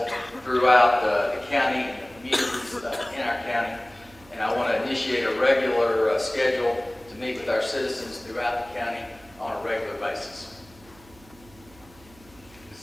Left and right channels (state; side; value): noise; right; hum, 25 dB below the sound